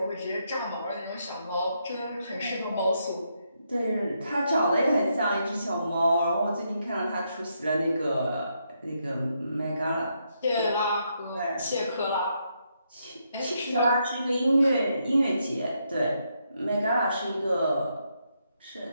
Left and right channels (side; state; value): both; inverted; correlation -0.79